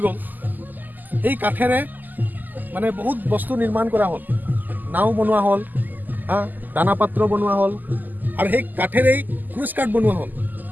গ'ল এই কাঠেৰে মানে বহুত বস্তু নিৰ্মাণ কৰা হ'ল নাও বনোৱা হ'ল দানা পাত্ৰ বনোৱা হ'ল আৰু সেই কাঠেৰেই ক্ৰুজ কাঠ বনোৱা হ'ল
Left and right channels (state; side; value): late; left; 0.085 ms